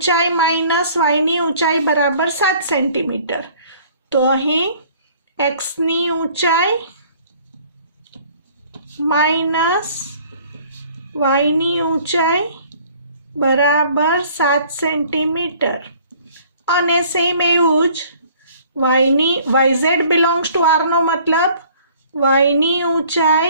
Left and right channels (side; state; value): both; inverted; correlation -0.55